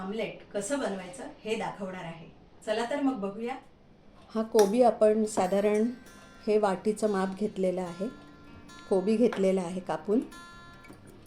कसं बनवायचं हे दाखवणार आहे। चला तर मग बघूया। हा कोबी आपण साधारण हे वाटीचं माप घेतलेलं आहे। कोबी घेतलेला आहे कापून,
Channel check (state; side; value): identical; both; correlation 1.00